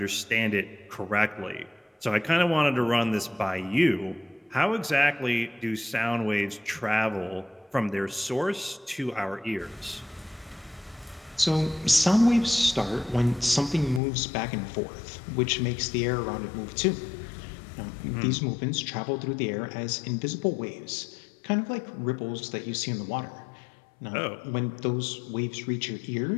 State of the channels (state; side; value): drops out; right; at 14.0 s